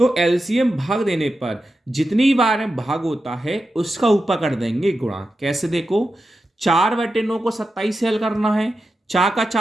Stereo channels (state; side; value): normal; both; correlation 0.90